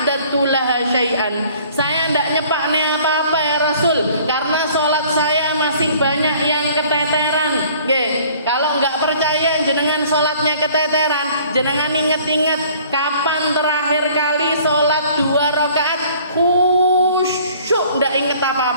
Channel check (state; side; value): inverted; both; correlation -0.53